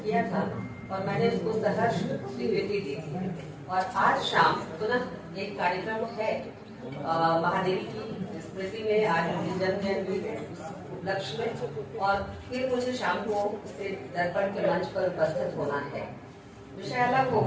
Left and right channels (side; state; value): both; identical; correlation 1.00